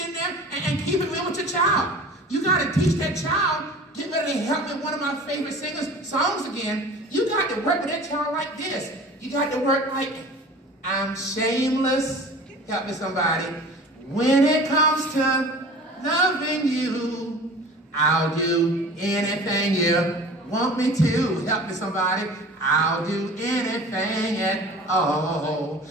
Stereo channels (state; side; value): normal; both; correlation 0.41